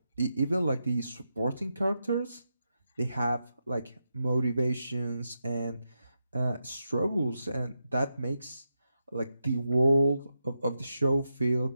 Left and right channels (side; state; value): both; inverted; correlation -0.87